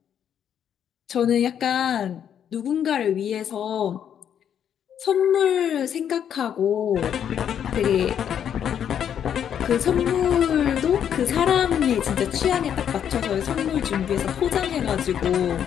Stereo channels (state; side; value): quieter; right; 9.0 dB